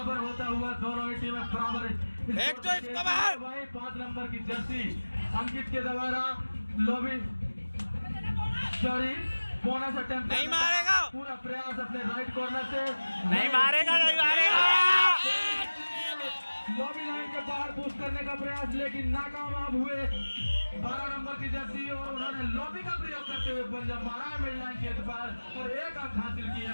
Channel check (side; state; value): both; inverted; correlation -1.00